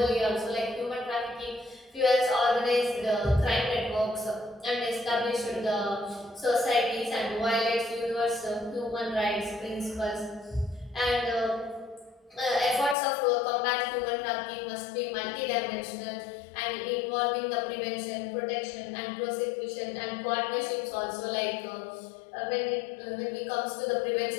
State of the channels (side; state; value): right; drops out; at 13.0 s